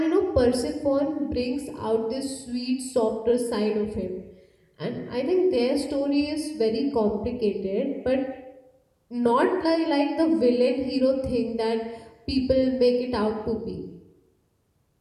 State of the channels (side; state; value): both; identical; correlation 1.00